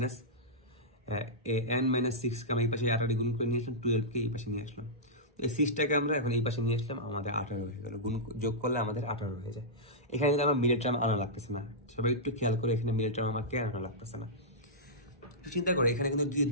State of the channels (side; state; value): both; normal; correlation -0.13